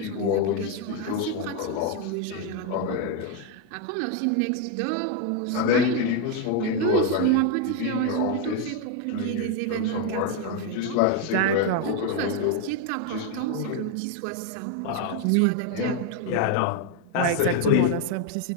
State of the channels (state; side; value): different; both; correlation 0.01